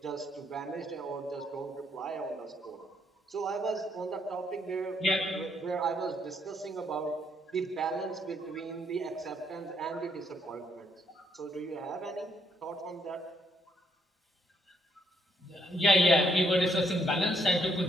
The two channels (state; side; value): normal; both; correlation 0.72